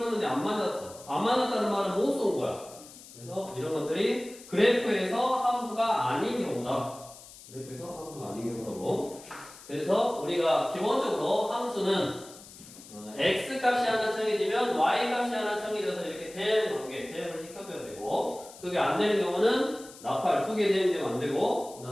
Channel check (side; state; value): left; noise; hiss, 19 dB below the sound